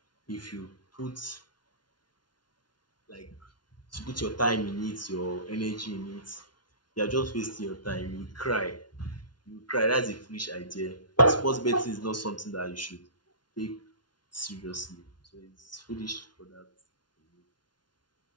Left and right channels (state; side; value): late; right; 0.70 ms